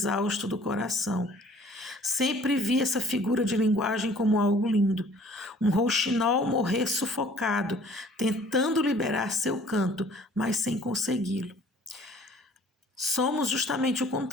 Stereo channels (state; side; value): normal; both; correlation 0.54